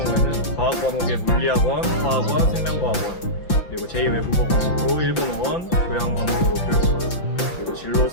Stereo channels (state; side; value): late; right; 5.9 ms